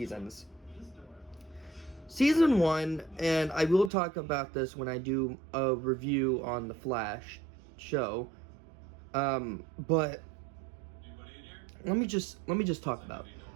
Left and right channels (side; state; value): left; drops out; at 3.9 s